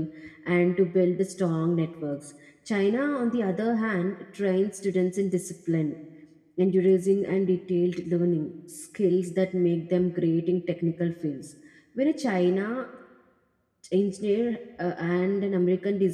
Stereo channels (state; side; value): identical; both; correlation 1.00